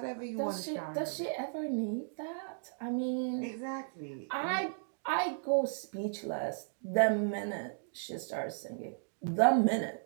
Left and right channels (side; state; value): left; silent; digital silence